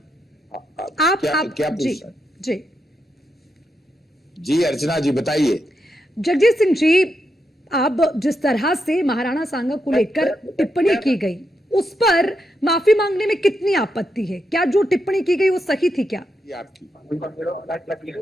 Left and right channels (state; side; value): normal; both; correlation 0.83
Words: आप क्या जी जी जी अर्चना जी बताइए। जगदीश सिंह जी, अब जिस तरह से महाराणा सांगा को लेकर टिप्पणी की गई, उस पर माफी मांगने में कितनी आपत्ति है? क्या जो टिप्पणी की गई वो सही थी क्या?